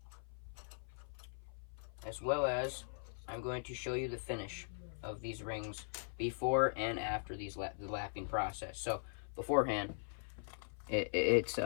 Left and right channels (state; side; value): silent; right; 51 dB below the other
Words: As well as, I'm going to show you the finish of these rings before and after the lapping process. So beforehand, it's